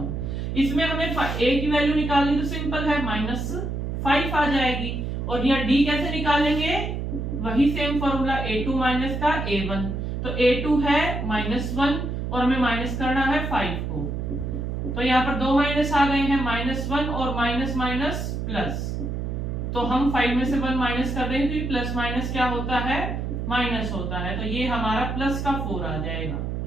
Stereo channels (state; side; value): noise; right; hum, 3 dB below the sound